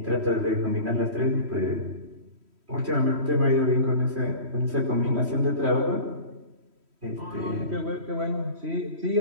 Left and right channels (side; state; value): left; late; 3.1 ms